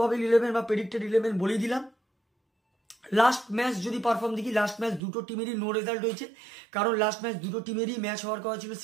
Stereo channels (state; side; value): drops out; left; at 5.0 s